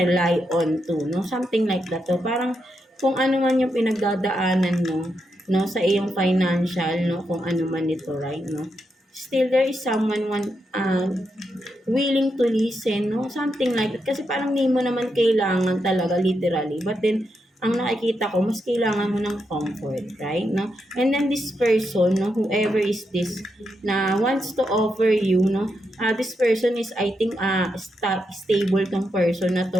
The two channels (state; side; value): normal; both; correlation 0.83